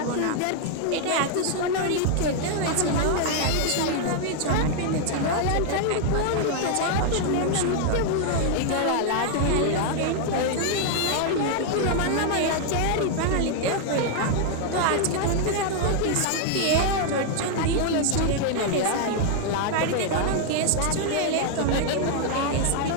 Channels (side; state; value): both; different; correlation 0.00